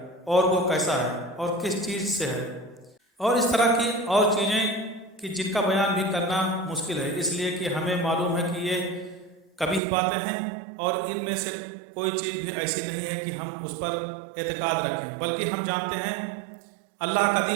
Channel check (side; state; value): left; drops out; at 9.8 s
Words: اور وہ کیسا ہے اور کس چیز سے ہے، اور اس طرح کی اور چیزیں کہ جن کا بیان بھی کرنا مشکل ہے، اس لیے کہ ہمیں معلوم ہے کہ یہ کبھی باتیں ہیں اور ان میں سے کوئی چیز بھی ایسی نہیں ہے کہ ہم اس پر اعتقاد رکھیں، بلکہ ہم جانتے ہیں اللہ